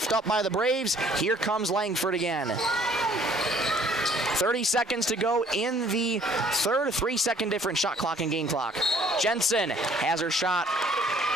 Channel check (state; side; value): normal; both; correlation 0.58